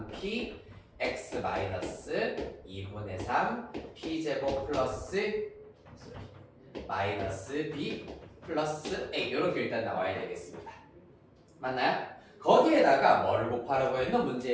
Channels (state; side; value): identical; both; correlation 1.00